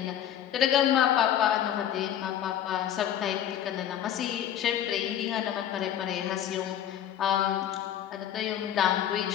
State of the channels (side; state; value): right; quieter; 10.7 dB